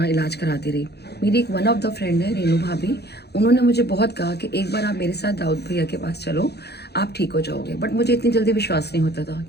इलाज कराती रही। मेरी एक वन ऑफ द फ्रेंड है रेनू भाभी, उन्होंने मुझे बहुत कहा कि एक बार आप मेरे साथ दाऊद भैया के पास चलो, आप ठीक हो जाओगे। बट मुझे इतनी जल्दी विश्वास नहीं होता था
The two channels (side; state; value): right; late; 0.48 ms